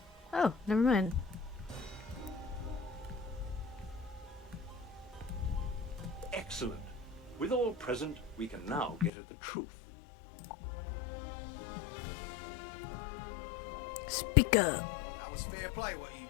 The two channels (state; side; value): drops out; right; at 9.1 s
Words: Oh, never mind. Excellent. With all present, we can now get at the truth. Speak up. That was fair play what you